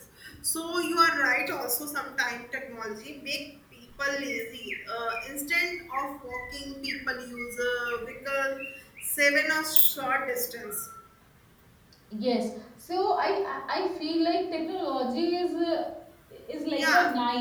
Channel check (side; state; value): both; identical; correlation 1.00